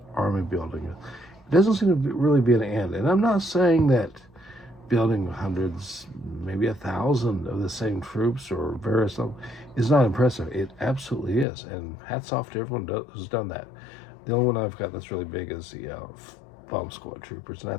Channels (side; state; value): right; drops out; at 11.5 s